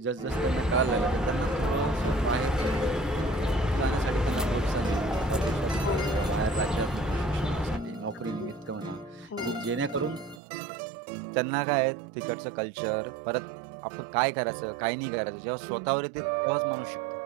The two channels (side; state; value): left; drops out; at 10.4 s